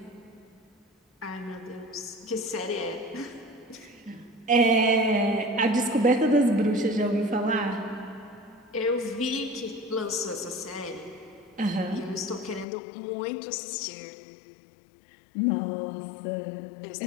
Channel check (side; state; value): right; drops out; at 12.7 s